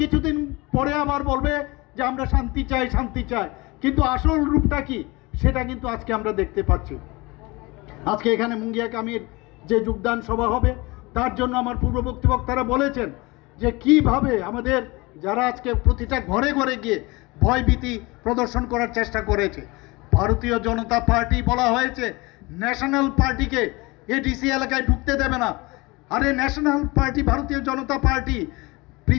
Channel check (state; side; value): quieter; right; 24.0 dB